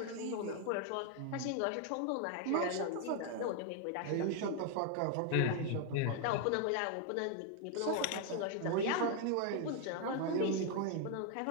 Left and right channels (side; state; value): both; different; correlation 0.00